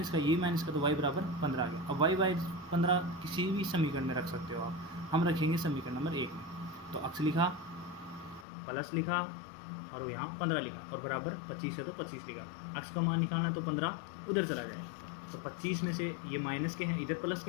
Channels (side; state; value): right; drops out; at 8.5 s